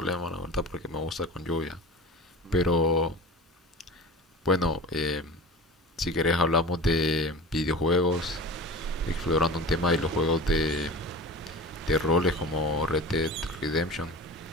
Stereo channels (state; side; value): normal; both; correlation 0.34